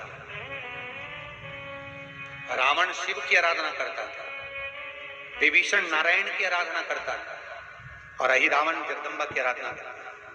रावण शिव की आराधना करता था, विभीषण नारायण की आराधना करता था, और अहिरावण जगदम्बा की आराधना करता था।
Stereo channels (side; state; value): both; identical; correlation 1.00